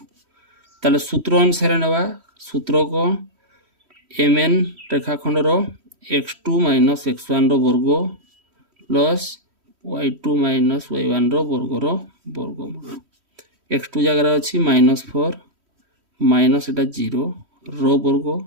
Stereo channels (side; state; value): left; late; 3.1 ms